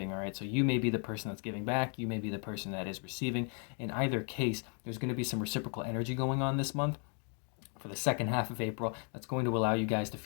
all right? So you may be the person that's giving back. You may be the person that is receiving. In either case, there's going to be some reciprocal energy going on this month for the second half of April that's going to allow you guys to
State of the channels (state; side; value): quieter; right; 39.7 dB